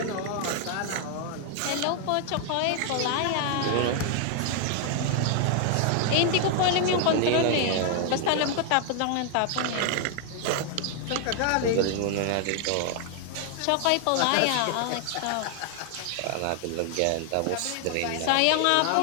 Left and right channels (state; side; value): different; both; correlation 0.00